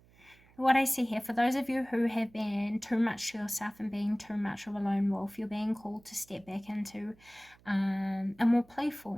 what I see here, for those of you who have been too much to yourself and being too much of a lone wolf, you're being called to step back into a more playful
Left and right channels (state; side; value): noise; right; hum, 28 dB below the sound